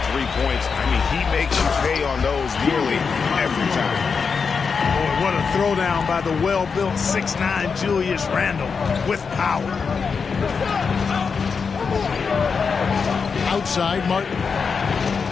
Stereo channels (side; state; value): right; quieter; 5.5 dB